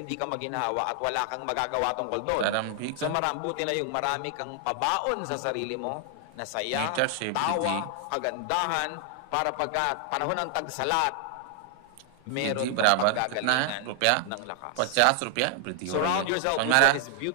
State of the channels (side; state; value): both; different; correlation 0.00